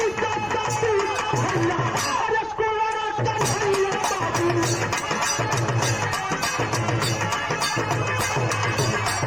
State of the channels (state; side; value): noise; left; rumble, 22 dB below the sound